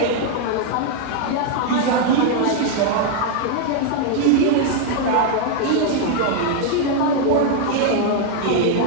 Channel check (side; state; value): both; different; correlation 0.00